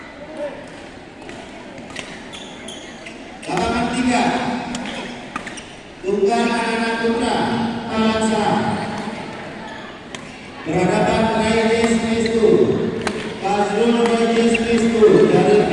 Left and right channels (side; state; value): both; identical; correlation 1.00